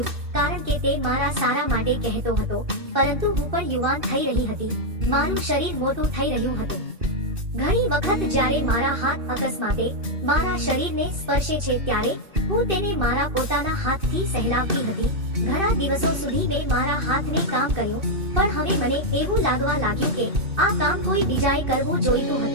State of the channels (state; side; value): late; left; 2.6 ms